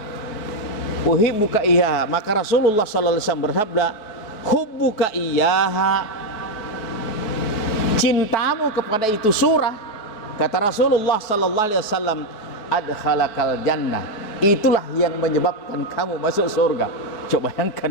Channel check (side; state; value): right; late; 4.6 ms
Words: Uhibbuka iyyaha. Maka Rasulullah sallallahu alaihi wasallam bersabda, hubbuka iyyaha, cintamu kepada itu surah, kata Rasulullah sallallahu alaihi wasallam, adkhalakal jannah, itulah yang menyebabkan kamu masuk surga. Coba